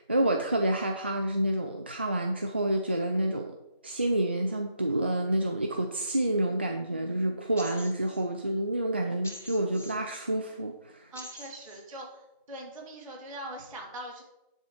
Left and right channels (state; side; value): inverted; both; correlation -0.79